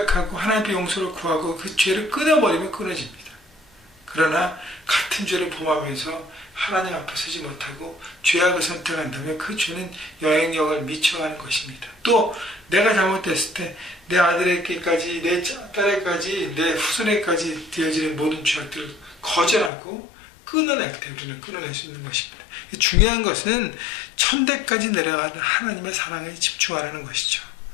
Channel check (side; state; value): right; drops out; at 19.7 s